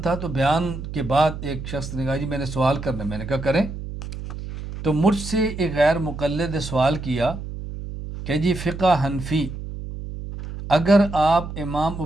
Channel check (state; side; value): noise; right; hum, 9 dB below the sound